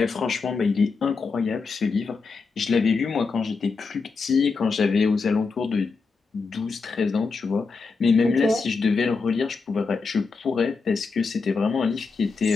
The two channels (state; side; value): quieter; right; 4.5 dB